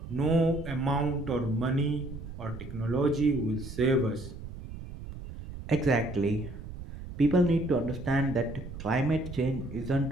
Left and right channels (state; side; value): noise; right; rumble, 11 dB below the sound